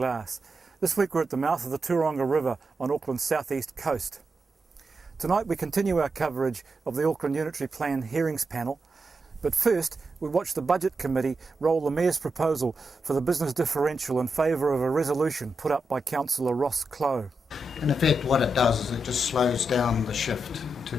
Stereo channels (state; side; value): normal; both; correlation 0.87